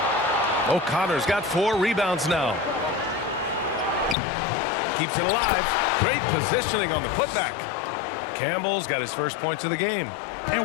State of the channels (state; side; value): drops out; right; at 4.2 s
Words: O'Connor's got 4 rebounds now. Keeps it alive. Great positioning on the putback. Campbell's got his first points of the game.